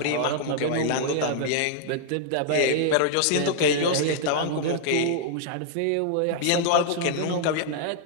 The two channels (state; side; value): different; both; correlation -0.01